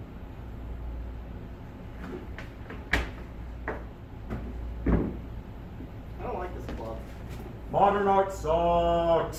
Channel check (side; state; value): both; identical; correlation 1.00